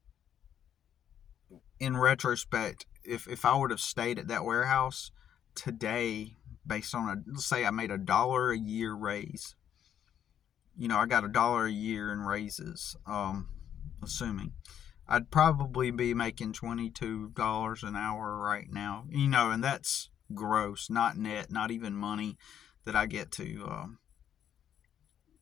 in retrospect, if I would have stayed at that warehouse today, based on let's say I made $1 a year raise, I got $1 a year in raises, assuming I'd probably be making $22 an hour right now, and that's gross, not net, not even money that I get to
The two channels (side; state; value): right; quieter; 9.6 dB